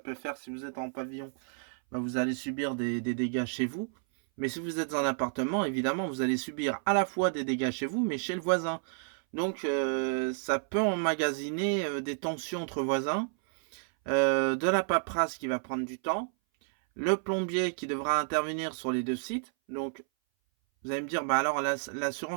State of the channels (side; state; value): left; silent; 57 dB below the other